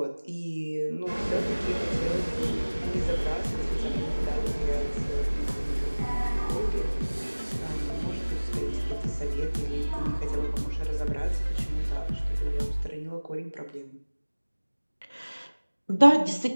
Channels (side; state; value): both; inverted; correlation -1.00